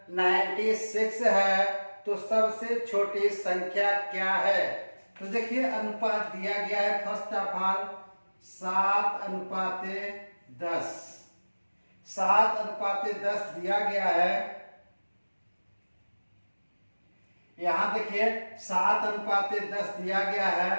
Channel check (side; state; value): both; inverted; correlation -1.00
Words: 96 है तो सबसे छोटी संख्या क्या है? तो देखिए अनुपात दिया गया है फर्स्ट ऑफ ऑल 7:10। 7:10 दिया गया है। यहाँ देखिए 7:10 दिया गया है